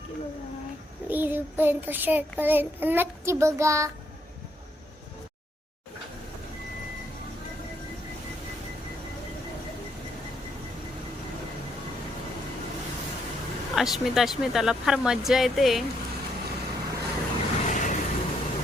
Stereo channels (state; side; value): normal; both; correlation 0.74